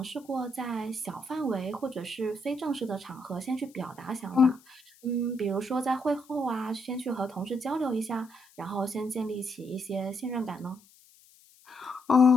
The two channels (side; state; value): left; noise; hiss, 27 dB below the sound